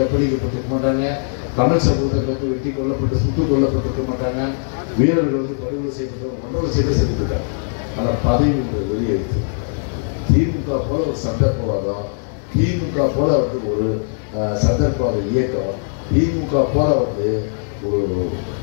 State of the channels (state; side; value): silent; right; digital silence